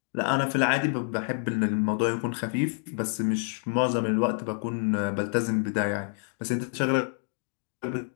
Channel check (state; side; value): silent; right; 59 dB below the other